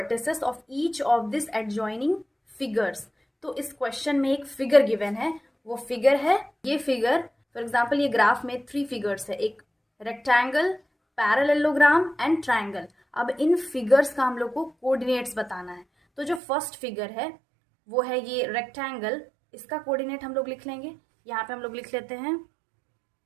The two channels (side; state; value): left; drops out; at 16.4 s